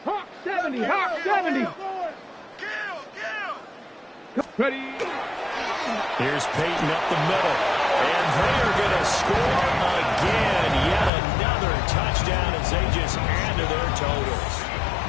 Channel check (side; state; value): right; drops out; at 11.1 s